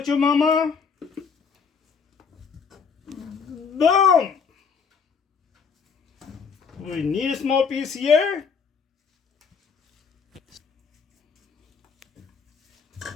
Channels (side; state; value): right; quieter; 5.9 dB